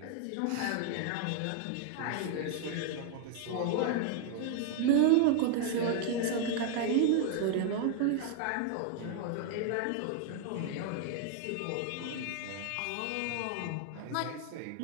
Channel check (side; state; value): both; different; correlation 0.00